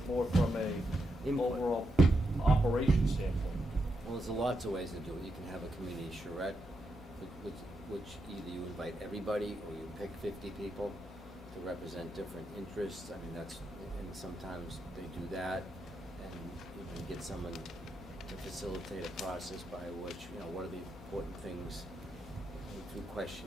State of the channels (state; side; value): normal; both; correlation 0.83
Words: more from a Input. overall operation standpoint. Well, there's lots of ways to do it. You can have a community charrette, which either you invite everybody or you pick 50 people to represent different interests. I mean, and sometimes they do that, and you can get someone to facilitate a process by which, what are the important things through